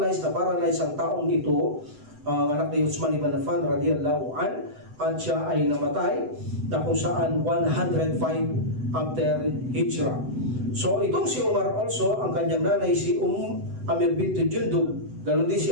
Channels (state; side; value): late; left; 7.9 ms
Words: ang taong ito, anak ni Uthman ibn Affan radiyallahu an, at siya ay namatay na kung saan 105 after Hijrah. So itong si Umar also, ang kanyang nanay si Amir binti Jundub. Ganon din si